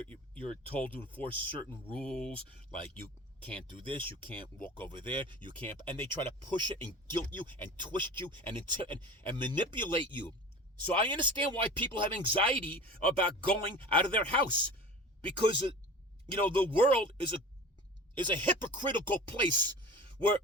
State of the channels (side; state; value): both; normal; correlation 0.37